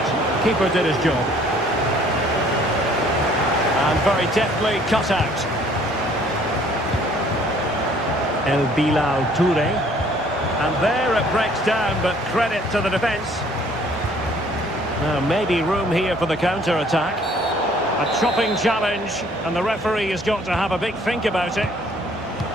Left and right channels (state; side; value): normal; both; correlation 0.58